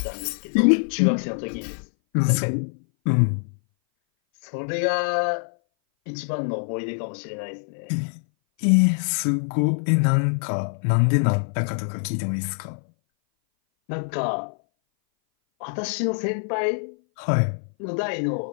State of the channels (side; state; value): right; silent; 58 dB below the other